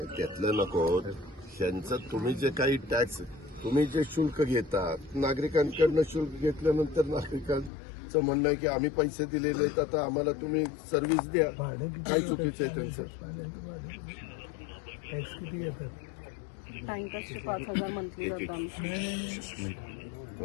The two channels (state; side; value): drops out; right; at 7.7 s